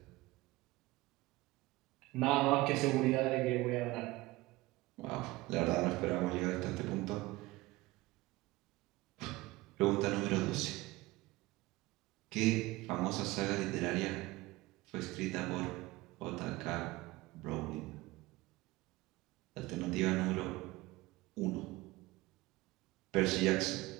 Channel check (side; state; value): left; quieter; 20.1 dB